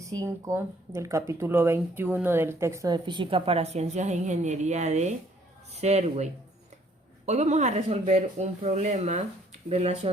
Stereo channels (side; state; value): both; normal; correlation 0.63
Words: del capítulo 21 del texto de Física para Ciencias e Ingeniería de Serway. Hoy vamos a resolver un problema